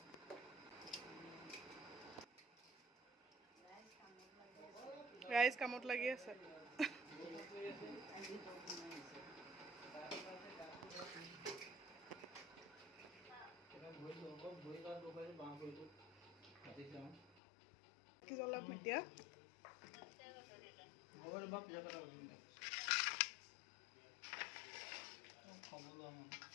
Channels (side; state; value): right; drops out; at 17.3 s